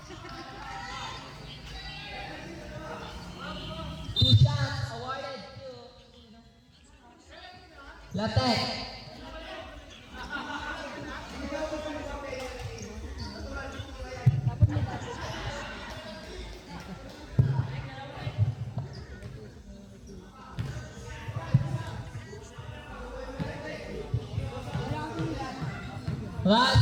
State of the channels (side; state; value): both; identical; correlation 1.00